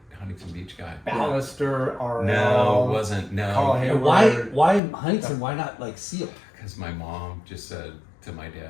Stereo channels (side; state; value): right; drops out; at 4.8 s